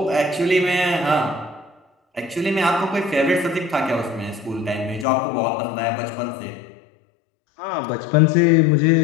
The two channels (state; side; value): drops out; right; at 5.1 s